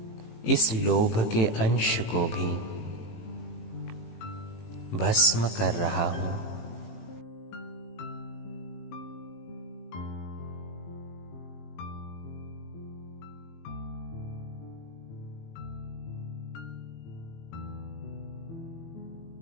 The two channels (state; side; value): late; right; 18 ms